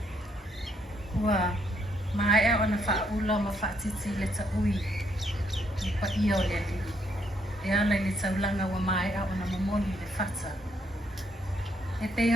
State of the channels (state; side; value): normal; both; correlation 0.73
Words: Ua, mai e ona whaula ma whaatiti le ta ui, i pa ia o le li. E ala le taulanga wa mai e ona momoni le whata. E pe